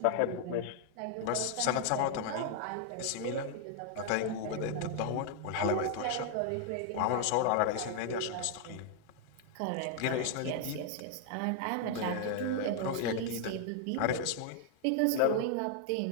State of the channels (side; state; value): both; different; correlation 0.00